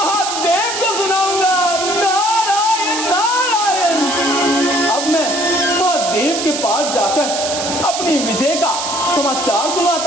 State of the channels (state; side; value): noise; right; hiss, 4 dB below the sound